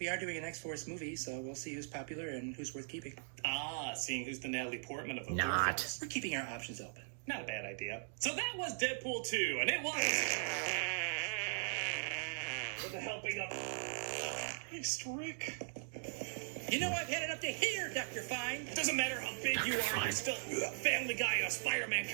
are doing an X-Force movie, so we'll see who's popular and who's worth keeping. Ah, seeing who's the Natalie Portman of the Not. Warfels. We're keeping our options open. Not a bad idea. So that was Deadpool 2, and it was... with the helping of... Christ, Rick. You know I've had it up to here, Dr. Fine. It doesn't matter how big you are, you're still Family Guy in a Spider-Man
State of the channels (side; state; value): left; silent; digital silence